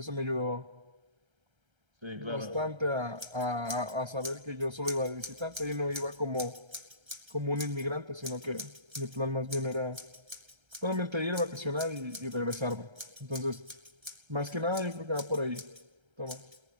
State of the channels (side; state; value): left; late; 1.3 ms